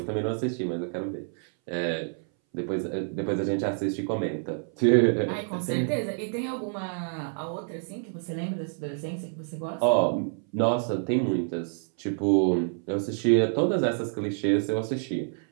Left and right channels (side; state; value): left; silent; 60 dB below the other